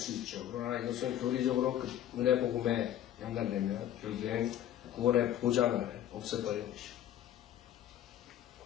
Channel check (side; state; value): right; quieter; 11.5 dB